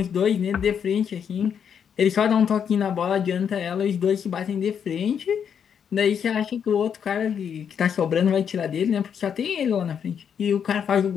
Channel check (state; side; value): quieter; right; 7.7 dB